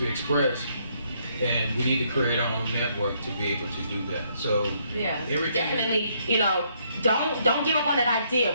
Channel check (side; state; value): both; inverted; correlation -0.71